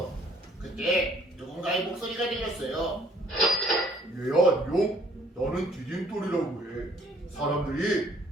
그때 누군가의 목소리가 들렸어요. 얘야 안녕. 나는 디딤돌이라고 해. 사람들이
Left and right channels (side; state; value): both; normal; correlation 0.61